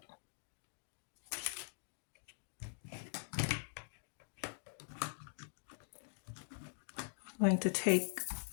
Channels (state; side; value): silent; right; digital silence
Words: I'm going to take,